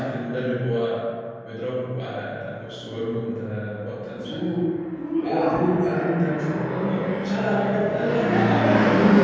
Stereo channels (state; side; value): identical; both; correlation 1.00